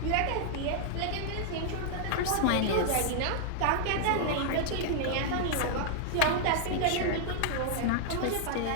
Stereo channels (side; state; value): both; different; correlation -0.01